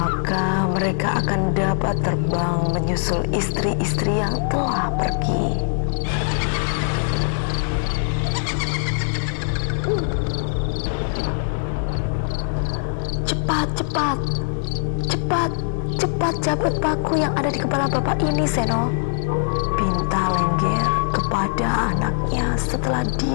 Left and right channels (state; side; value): silent; right; digital silence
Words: mereka akan dapat terbang menyusul istri-istri yang telah pergi. Cepat, cepat, cepat, cepat cabut paku yang ada di kepala bapak ini, Seno, pinta Lengger kepada anaknya setelah